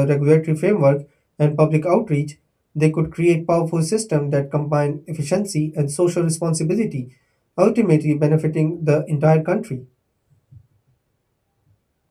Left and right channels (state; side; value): identical; both; correlation 1.00